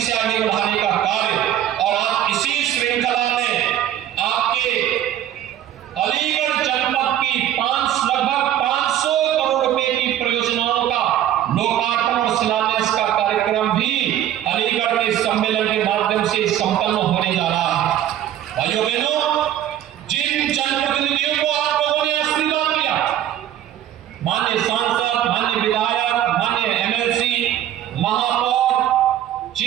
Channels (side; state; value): left; quieter; 11.6 dB